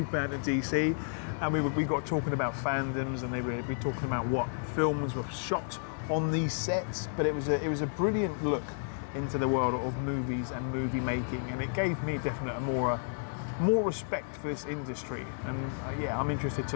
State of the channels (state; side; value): silent; right; digital silence